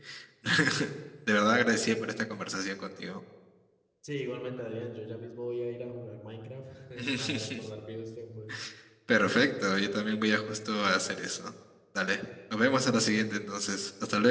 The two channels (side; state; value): both; identical; correlation 1.00